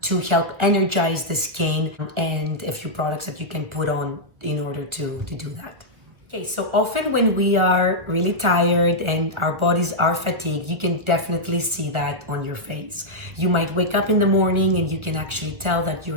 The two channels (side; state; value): left; late; 1.6 ms